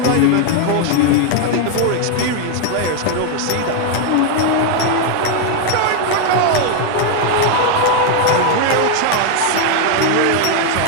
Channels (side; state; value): both; different; correlation 0.01